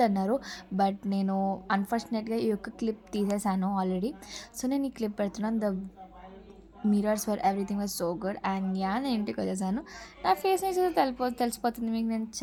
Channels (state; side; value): identical; both; correlation 1.00